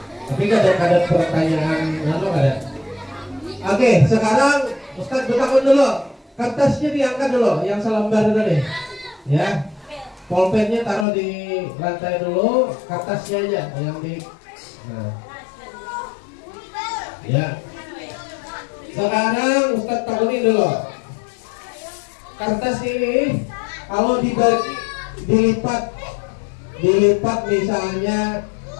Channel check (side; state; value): right; drops out; at 11.1 s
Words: Tapi kadang-kadang pertanyaan apa ada? Oke, sekarang Ustadz bertakun dulu. Kertasnya diangkat dulu, yang selembar tadi. Ya. Pulpennya taruh di lantai dulu, kertasnya aja yang di. Nah. Ya. Sekarang Ustadz takunin dulu. Kertas ini kalau dibagi dilipat misalnya